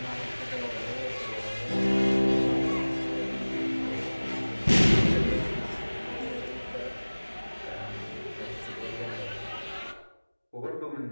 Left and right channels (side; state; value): both; inverted; correlation -1.00